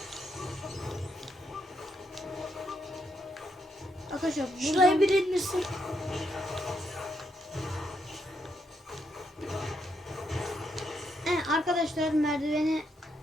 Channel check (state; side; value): normal; both; correlation 0.78